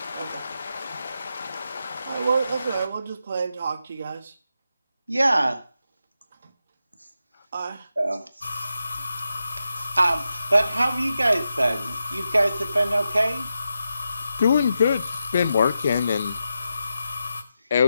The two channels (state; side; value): inverted; both; correlation -0.88